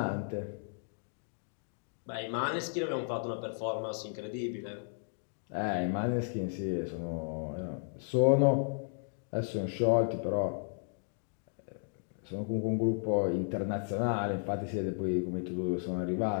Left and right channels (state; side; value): silent; right; digital silence